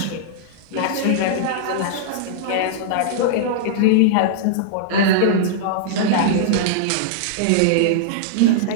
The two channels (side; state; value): both; different; correlation -0.01